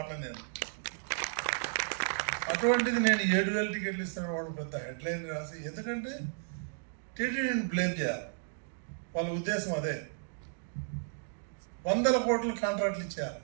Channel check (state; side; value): silent; left; digital silence